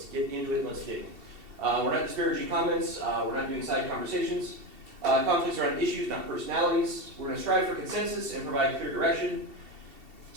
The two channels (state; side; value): late; left; 2.7 ms